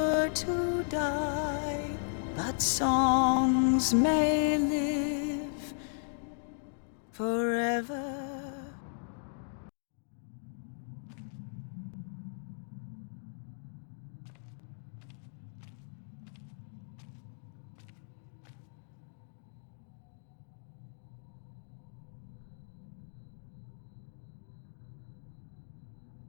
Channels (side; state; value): right; silent; digital silence